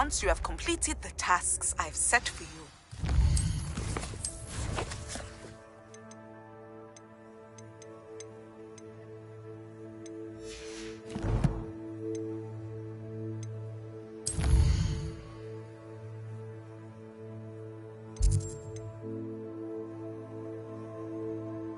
you have completed the tasks I've set for you.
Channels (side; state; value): both; identical; correlation 1.00